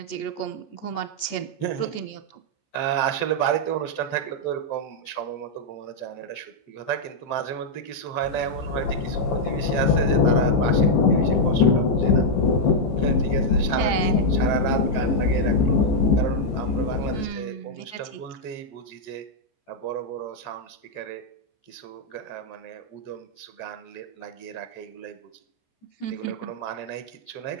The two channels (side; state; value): right; late; 14 ms